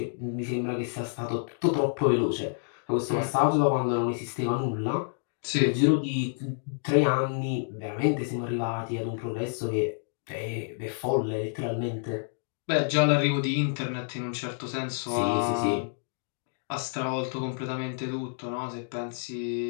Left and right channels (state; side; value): silent; right; digital silence